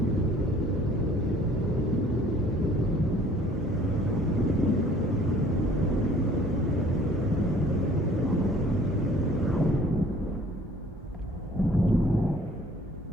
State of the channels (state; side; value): normal; both; correlation 0.54